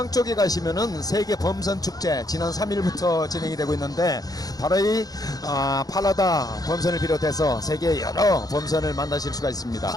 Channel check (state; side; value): late; right; 0.18 ms